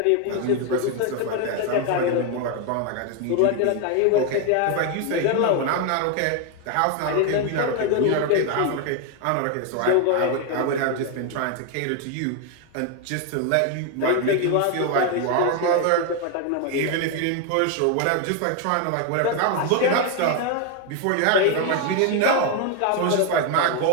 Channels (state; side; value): different; both; correlation 0.01